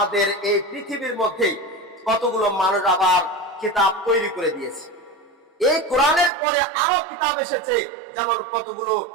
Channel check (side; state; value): left; drops out; at 6.3 s